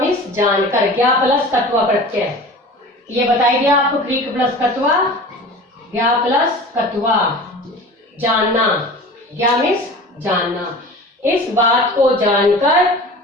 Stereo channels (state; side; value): normal; both; correlation 0.38